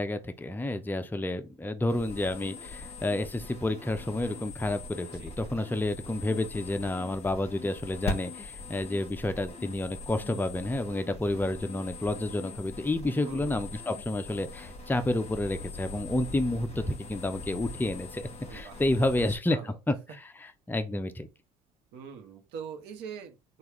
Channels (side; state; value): both; normal; correlation 0.84